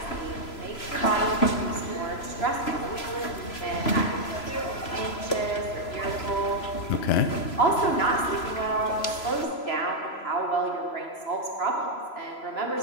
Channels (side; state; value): right; late; 3.0 ms